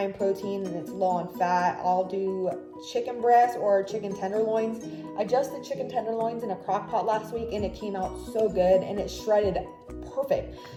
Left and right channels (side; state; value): both; identical; correlation 1.00